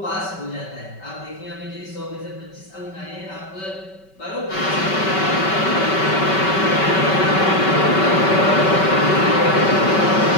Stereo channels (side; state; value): right; late; 5.2 ms